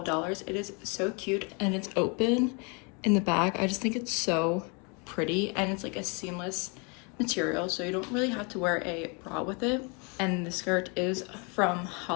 It is so cute and it's open in the back. I just think it's so pretty and it's like a seamless material, so you don't really have to wear a bra with it. And the skirt is from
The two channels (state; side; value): quieter; right; 33.2 dB